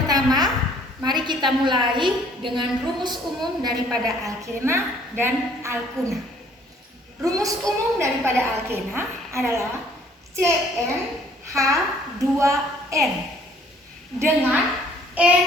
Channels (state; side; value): normal; both; correlation 0.59